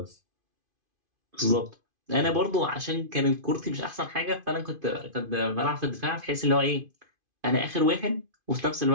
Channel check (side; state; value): left; late; 2.5 ms